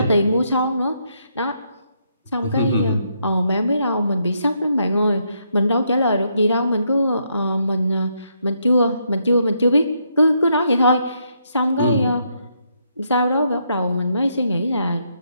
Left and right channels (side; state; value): both; inverted; correlation -0.76